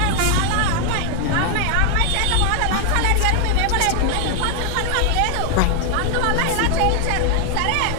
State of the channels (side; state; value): both; different; correlation 0.00